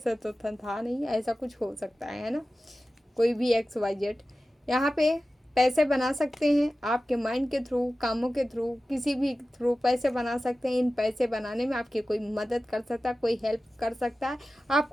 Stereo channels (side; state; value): both; normal; correlation 0.95